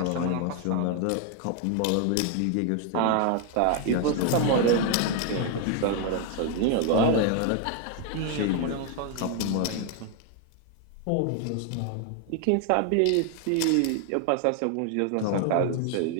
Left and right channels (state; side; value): different; both; correlation 0.01